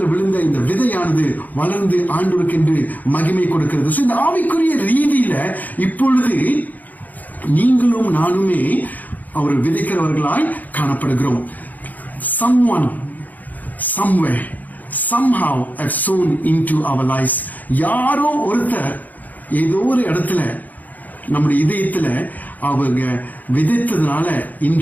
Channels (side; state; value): right; late; 0.081 ms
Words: விழுந்த இந்த விதையானது வளர்ந்து ஆண்டவருக்கென்று மகிமை கொடுக்கிறது. இந்த ஆவிக்குரிய ரீதியில இப்பொழுது நீங்களும் நானுமே அவர் விதைக்கிறவர்களாய் காணப்படுகிறோம். Someone, somewhere, somehow have sown into our lives. யாரோ ஒருத்தர் ஏதோ ஒரு இடத்துல நம்முடைய இதயத்துல அவங்க விதைத்ததுனால